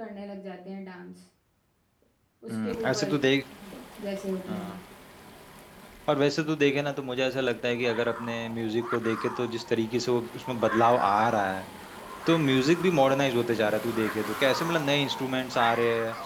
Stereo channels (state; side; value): identical; both; correlation 1.00